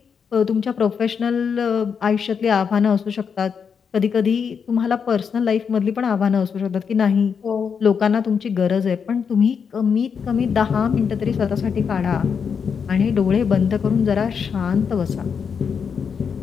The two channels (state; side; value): quieter; right; 6.5 dB